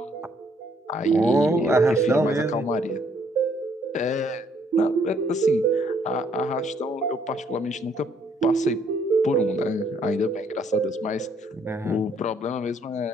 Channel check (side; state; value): both; normal; correlation 0.67